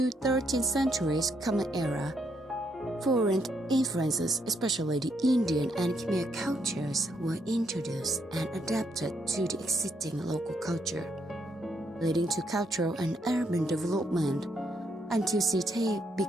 13th centuries Common Era, foreign influences, especially the Indian and Khmer cultures, were introduced and adapted to the existing local culture, leading to cultural and urban development until Sithep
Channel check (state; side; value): normal; both; correlation 0.75